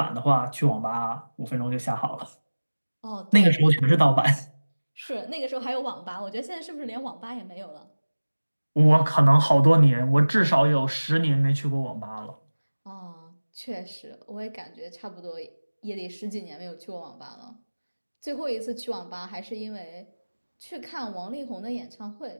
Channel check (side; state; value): both; inverted; correlation -1.00